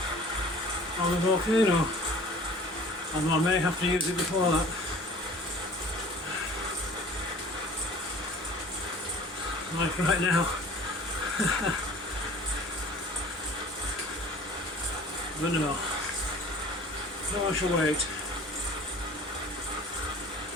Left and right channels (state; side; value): normal; both; correlation 0.46